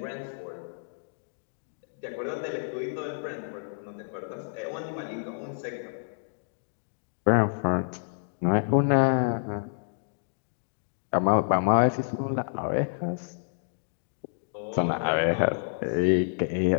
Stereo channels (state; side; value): silent; right; digital silence